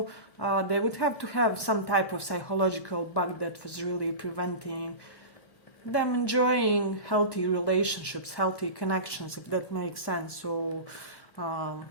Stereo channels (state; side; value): late; right; 1.1 ms